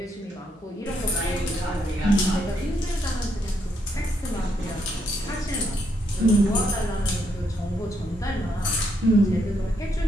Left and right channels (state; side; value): normal; both; correlation 0.76